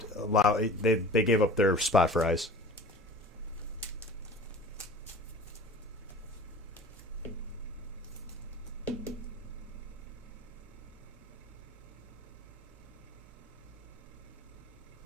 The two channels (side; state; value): both; normal; correlation 0.41